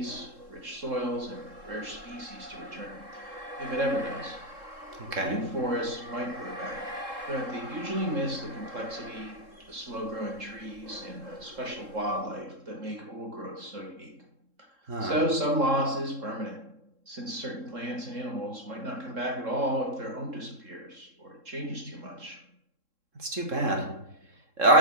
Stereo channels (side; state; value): left; late; 3.7 ms